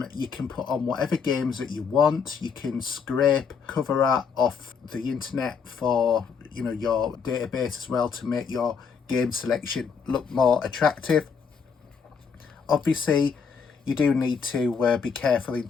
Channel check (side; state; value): right; quieter; 6.1 dB